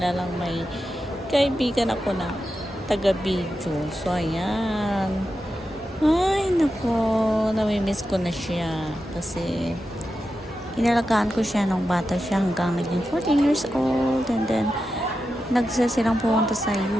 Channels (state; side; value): normal; both; correlation 0.90